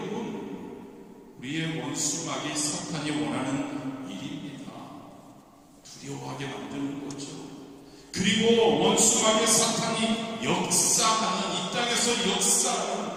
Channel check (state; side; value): identical; both; correlation 1.00